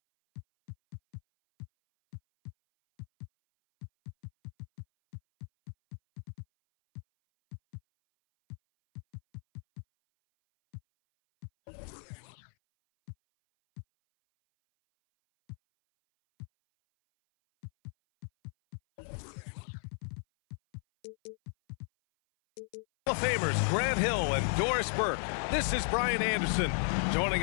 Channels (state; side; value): silent; right; 55 dB below the other